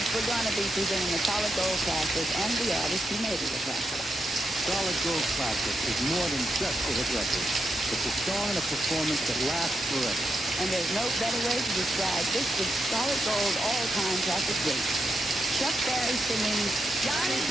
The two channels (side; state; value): both; normal; correlation 0.85